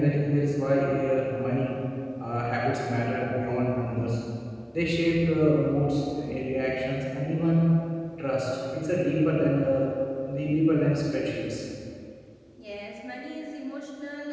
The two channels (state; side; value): identical; both; correlation 1.00